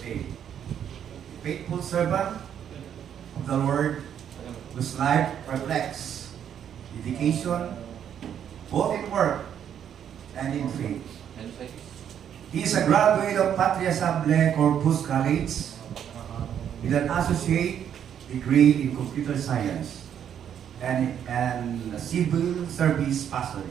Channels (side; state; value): left; quieter; 9.1 dB